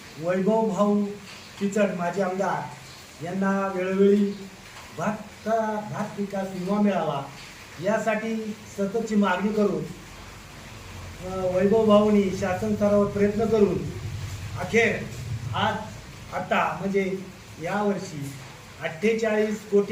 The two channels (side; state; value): both; identical; correlation 1.00